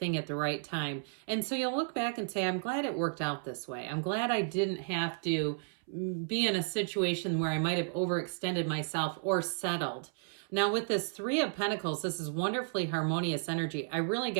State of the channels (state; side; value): silent; left; 56 dB below the other